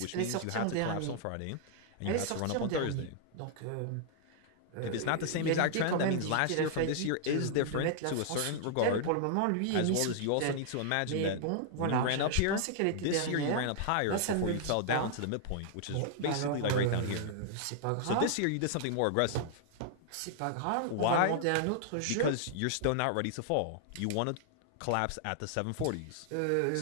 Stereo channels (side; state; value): both; different; correlation -0.01